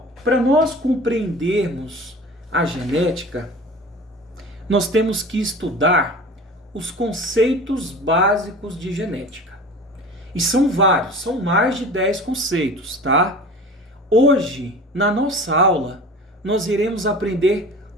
para nós compreendermos a genética, nós temos que estudar os conceitos básicos de genética. E são vários, são mais de 10 conceitos, tá? Hoje, na nossa aula, nós iremos aprender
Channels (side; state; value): both; normal; correlation 0.38